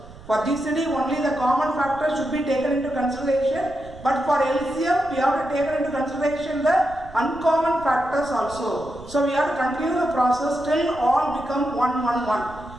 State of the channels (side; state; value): right; noise; rumble, 18 dB below the sound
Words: For GCD, only the common factor should be taken into consideration. But for LCM, we have to take into consideration the uncommon factors also. So we have to continue the process till all become 1, 1, 1.